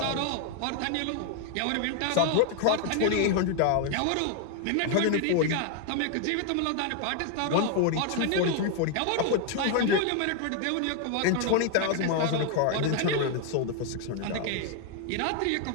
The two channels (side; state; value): both; different; correlation 0.00